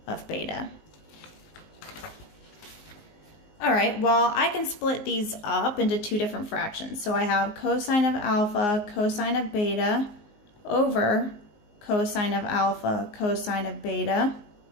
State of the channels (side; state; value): right; late; 19 ms